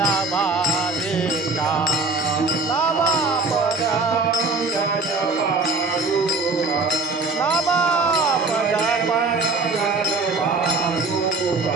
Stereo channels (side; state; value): left; quieter; 3.7 dB